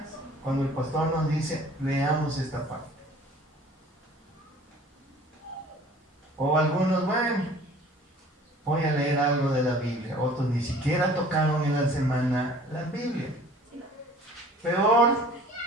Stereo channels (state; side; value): normal; both; correlation 0.49